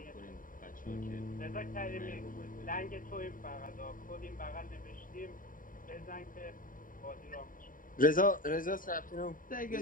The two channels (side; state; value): right; late; 0.40 ms